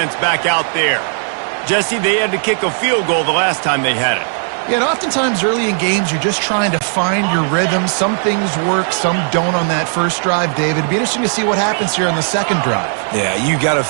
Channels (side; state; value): left; silent; 58 dB below the other